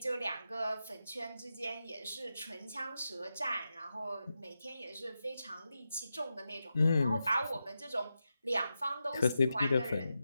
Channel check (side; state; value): both; inverted; correlation -0.89